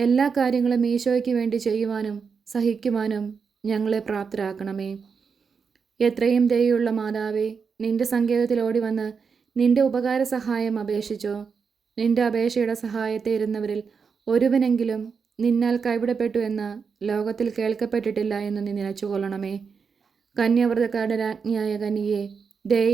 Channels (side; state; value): left; quieter; 5.7 dB